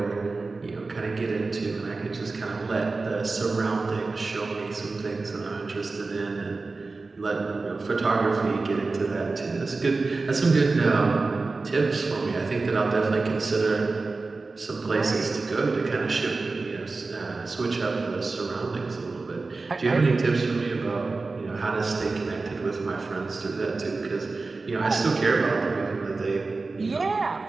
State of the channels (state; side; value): quieter; left; 3.8 dB